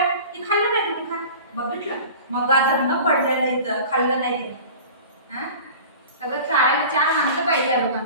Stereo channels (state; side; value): inverted; both; correlation -0.39